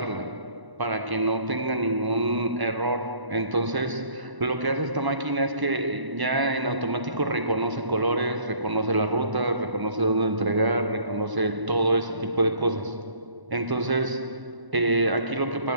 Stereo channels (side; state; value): left; late; 1.0 ms